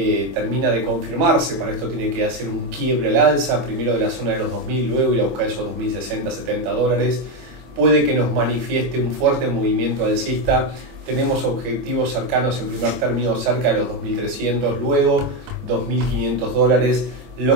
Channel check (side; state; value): left; late; 25 ms